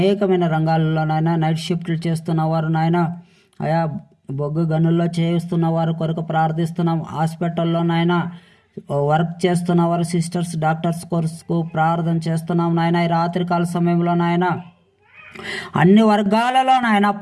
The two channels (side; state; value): both; identical; correlation 1.00